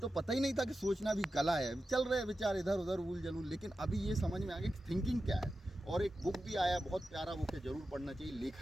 पता ही नहीं था कि सोचना भी कला है। चल रहे विचार इधर उधर उल जलूल, लेकिन अभी ये समझ में आ गया कि थिंकिंग क्या है। और एक बुक भी आया, बहुत प्यारा बुक है, ज़रूर पढ़ना चाहिए,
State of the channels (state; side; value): normal; both; correlation 0.92